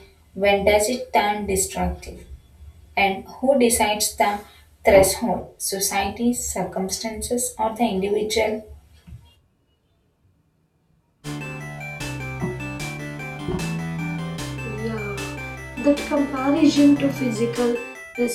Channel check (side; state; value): both; identical; correlation 1.00